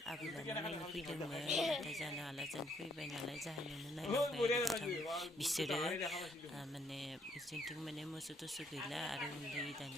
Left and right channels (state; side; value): normal; both; correlation 0.70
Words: आबैलानो नायनो फैदोंमोन नाथाय जानो हाला जों फैबाय नालाय जाहोनावनो नायलांबाय बिसोरो माने बिसोरथिं माने मोसौ थोसौ गैला आरो उन्दै